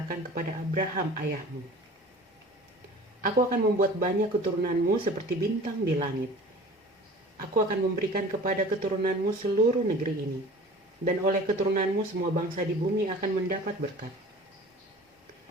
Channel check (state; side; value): normal; both; correlation 0.43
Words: kepada Abraham ayahmu. Aku akan membuat banyak keturunanmu seperti bintang di langit. Aku akan memberikan kepada keturunanmu seluruh negeri ini. Dan oleh keturunanmu semua bangsa di bumi akan mendapat berkat.